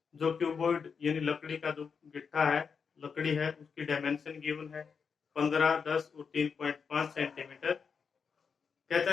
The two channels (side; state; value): right; quieter; 6.0 dB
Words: जो क्यूबॉइड यानी लकड़ी का जो गिट्टा है, लकड़ी है, उसकी डायमेंशन गिवन है 15, 10 और 3.5 सेंटीमीटर। कहता